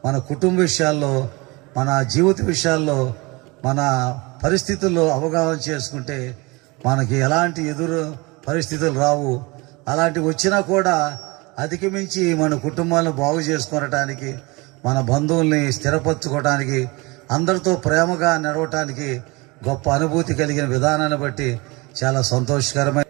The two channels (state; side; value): quieter; left; 25.3 dB